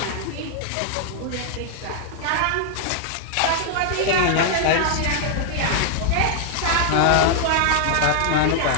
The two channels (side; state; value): both; different; correlation 0.00